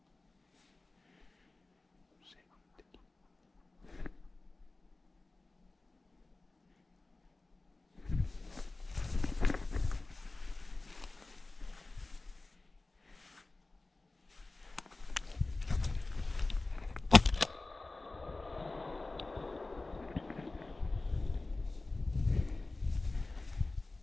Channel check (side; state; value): right; quieter; 3.2 dB